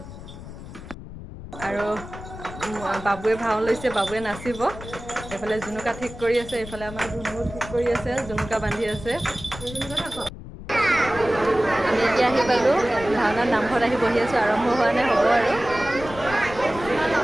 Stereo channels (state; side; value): noise; left; rumble, 13 dB below the sound